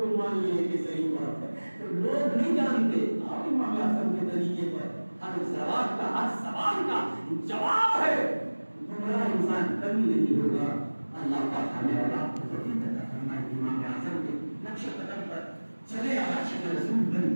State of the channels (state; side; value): inverted; both; correlation -1.00